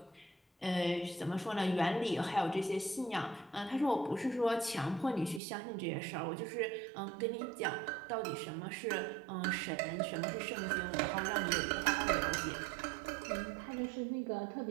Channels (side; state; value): left; drops out; at 5.4 s